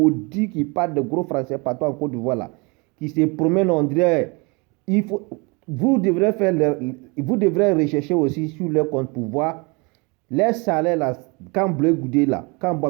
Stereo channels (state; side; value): quieter; left; 29.0 dB